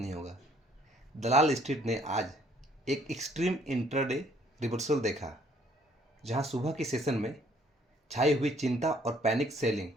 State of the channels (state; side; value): normal; both; correlation 0.63